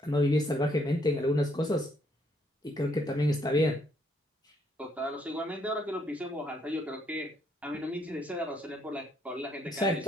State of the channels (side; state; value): both; normal; correlation 0.71